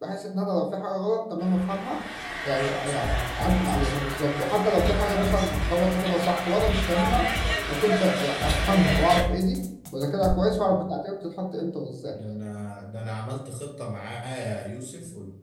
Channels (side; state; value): both; identical; correlation 1.00